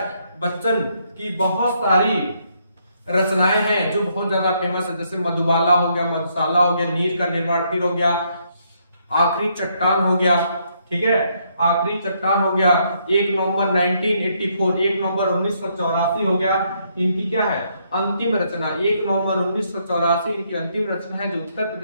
बच्चन की बहुत सारी रचनाएं हैं जो बहुत ज्यादा फेमस है, जैसे मधुबाला हो गया, मधुशाला हो गया, नीर का निर्माण फिर हो गया, आखिरी चट्टान हो गया, ठीक है, आखिरी चट्टान हो गया, 1 नवंबर 1984, 1 नवंबर 1984 हो गया। इनकी क्या है? अंतिम रचना, 1 नवंबर 1984 इनकी अंतिम रचना है जो उत्तर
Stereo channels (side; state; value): both; inverted; correlation -0.73